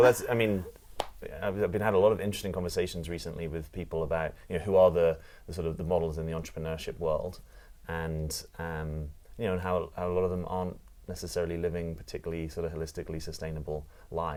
I've been had a lot of interesting conversations recently with people about who are the sort of the models in the entrepreneurship world, and and how a lot of them aren't necessarily living particularly sort of holistically sustainable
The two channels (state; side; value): identical; both; correlation 1.00